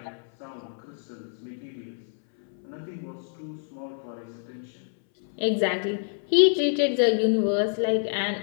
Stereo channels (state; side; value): silent; right; 60 dB below the other